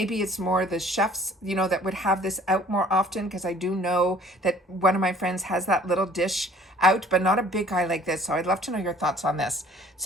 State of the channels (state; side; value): normal; both; correlation 0.54